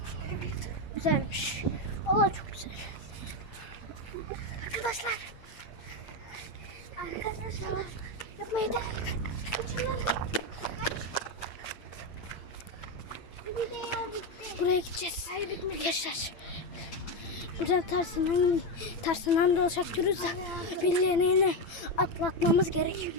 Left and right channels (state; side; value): late; right; 9.0 ms